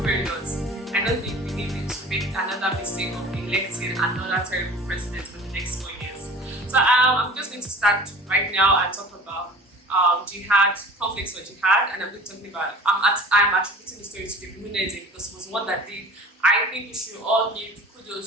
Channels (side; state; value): both; normal; correlation 0.43